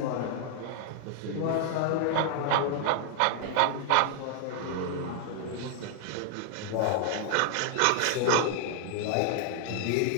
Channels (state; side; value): different; both; correlation 0.00